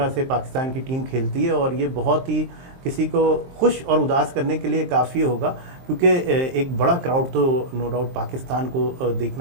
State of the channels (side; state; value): left; late; 23 ms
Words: से पाकिस्तान की टीम खेलती है, और ये बहुत ही किसी को खुश और उदास करने के लिए काफ़ी होगा क्योंकि एक बड़ा क्राउड तो नो डाउट पाकिस्तान को